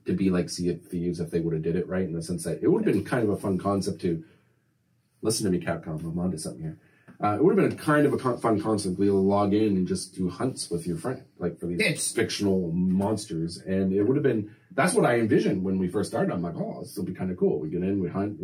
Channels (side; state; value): both; identical; correlation 1.00